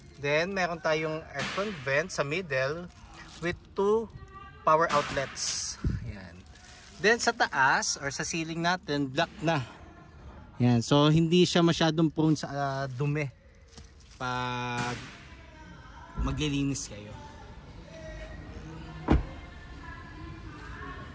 Then meron tayong aircon vent sa middle with 2 power outlets. Yan. Then sa taas or sa ceiling natin, black na. Yan, so hindi siya masyadong prone sa dumi pag maglilinis kayo.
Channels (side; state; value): both; identical; correlation 1.00